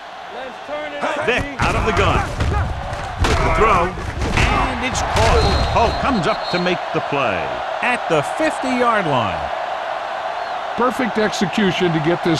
Let's turn it up. Vick out of the gun. With the throw, and it's caught. Hope comes up to make the play at the 50-yard line. Perfect execution to get this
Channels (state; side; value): identical; both; correlation 1.00